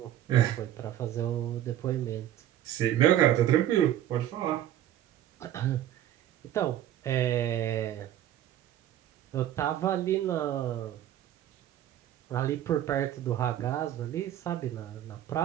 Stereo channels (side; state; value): left; quieter; 12.0 dB